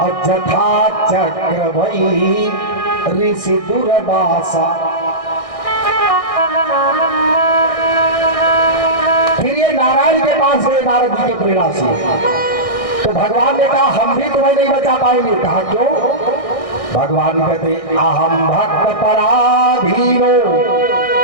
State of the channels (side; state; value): right; late; 1.6 ms